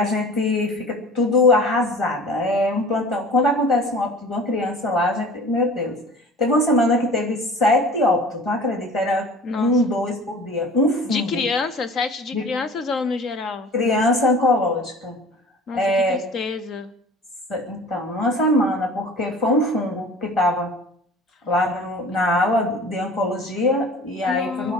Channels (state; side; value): normal; both; correlation 0.43